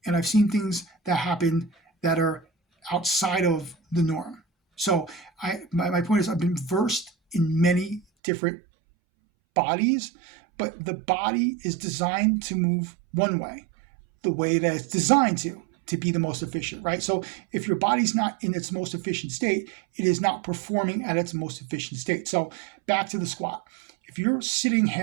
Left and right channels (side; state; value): left; drops out; at 8.0 s